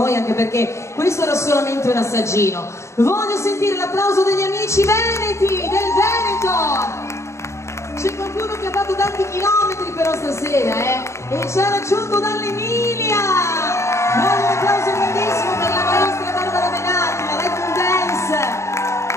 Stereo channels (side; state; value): right; late; 0.14 ms